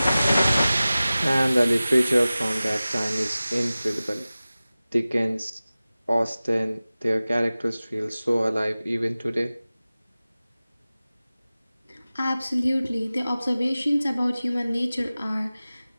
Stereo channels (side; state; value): both; inverted; correlation -0.97